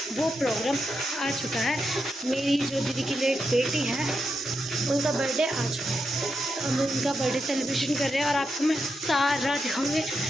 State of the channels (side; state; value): both; normal; correlation 0.85